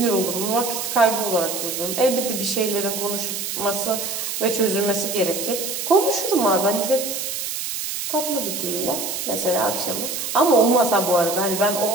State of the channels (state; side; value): noise; right; hiss, 4 dB below the sound